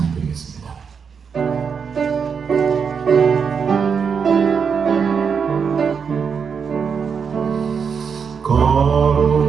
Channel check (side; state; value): left; quieter; 6.3 dB